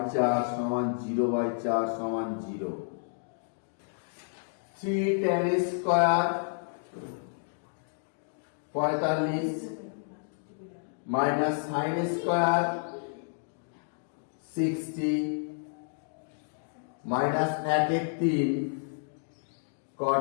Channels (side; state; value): right; silent; digital silence